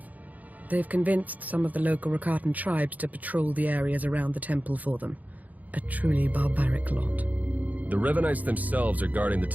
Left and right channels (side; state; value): left; late; 0.078 ms